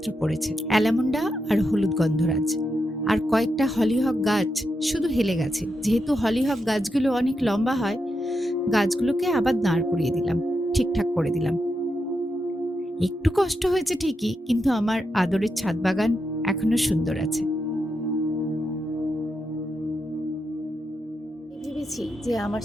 পড়েছে, অ্যালামন্ডা আর হলুদ গন্ধরাজ। আর কয়েকটা হলিহক গাছ শুধু হেলে গেছে। যেহেতু হলিহক গাছগুলো অনেক লম্বা হয়, গাছগুলোকে আবার দাঁড় করিয়ে দিলাম, ঠিকঠাক করে দিলাম। একটু কষ্ট হয়েছে ঠিকই, কিন্তু আমার আদরের ছাদ বাগান এখনো সুন্দর আছে। ভেবেছি যে আমার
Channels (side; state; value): both; normal; correlation 0.85